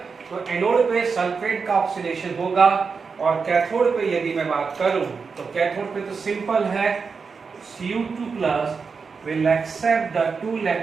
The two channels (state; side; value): quieter; left; 5.2 dB